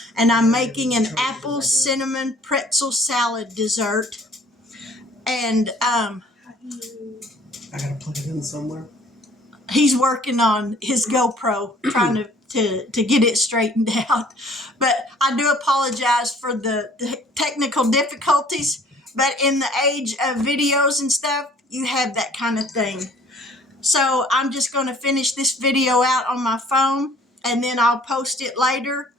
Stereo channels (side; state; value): both; normal; correlation 0.54